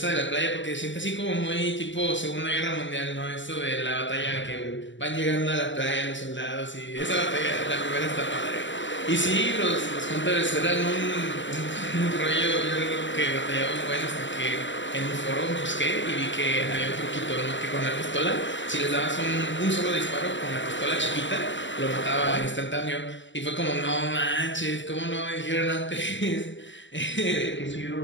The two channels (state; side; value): late; right; 0.54 ms